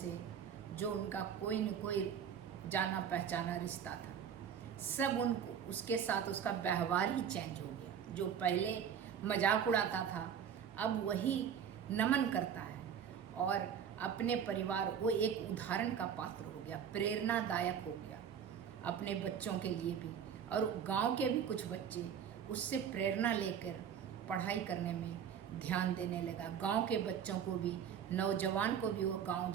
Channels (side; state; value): left; quieter; 8.2 dB